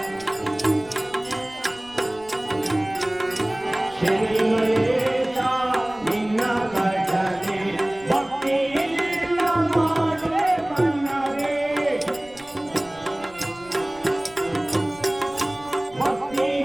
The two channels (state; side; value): noise; right; rumble, 25 dB below the sound